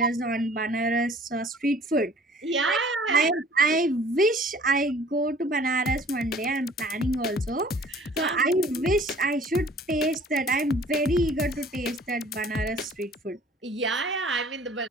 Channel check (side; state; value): both; normal; correlation 0.51